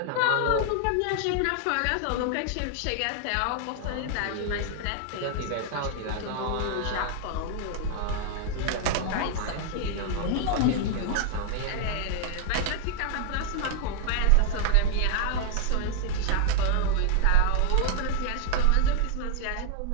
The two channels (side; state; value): both; different; correlation 0.00